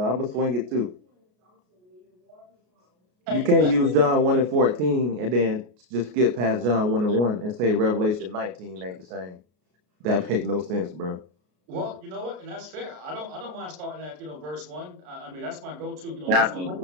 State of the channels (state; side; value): late; left; 33 ms